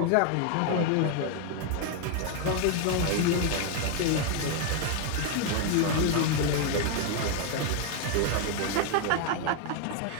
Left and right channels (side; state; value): both; different; correlation 0.01